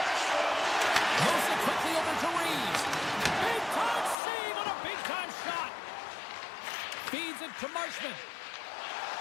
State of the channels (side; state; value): right; drops out; at 4.2 s